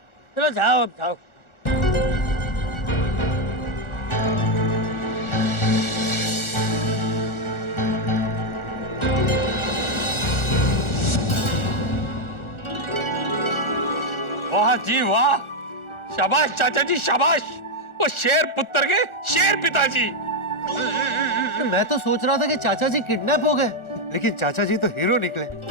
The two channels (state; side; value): late; right; 1.4 ms